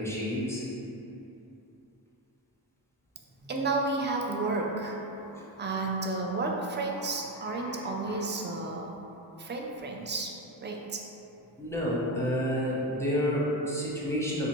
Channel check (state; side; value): normal; both; correlation 0.15